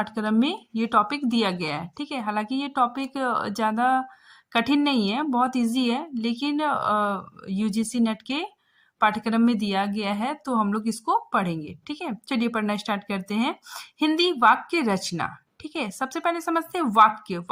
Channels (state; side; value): identical; both; correlation 1.00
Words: में ये टॉपिक दिया गया है। ठीक है, हालांकि ये टॉपिक ज़्यादा कठिन नहीं है, बहुत इजी है, लेकिन यूजीसी नेट के पाठ्यक्रम में दिया गया है, तो हम लोग इसको पढ़ेंगे। ठीक है, चलिए पढ़ना स्टार्ट करते हैं। हिंदी वाक्य रचना। ठीक है, सबसे पहले समझते हैं वाक्य।